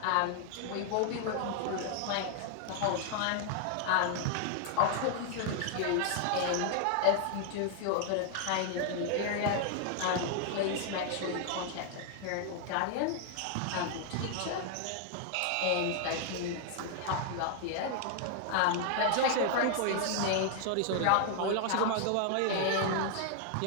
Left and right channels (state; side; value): different; both; correlation 0.00